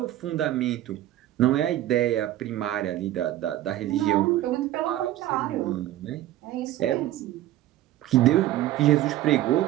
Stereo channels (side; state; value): left; quieter; 14.1 dB